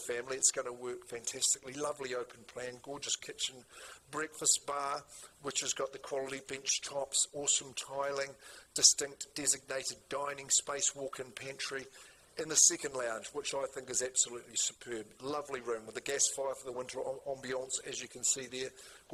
It's going to work fantastically. Lovely open plan, gorgeous kitchen, breakfast bar, which has got the quality bench tops, awesome tiling, distinct designated dining space, walk-in pantry, in the second lounge, which I think is absolutely superb. Lovely room with a gas fire for the winter ambiance, as you can see there.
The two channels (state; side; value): identical; both; correlation 1.00